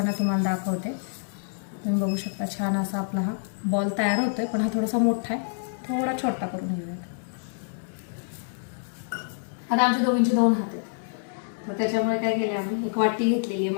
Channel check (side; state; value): right; silent; 60 dB below the other